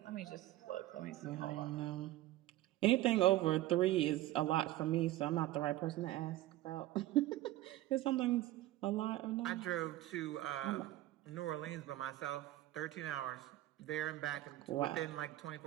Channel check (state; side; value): quieter; left; 15.7 dB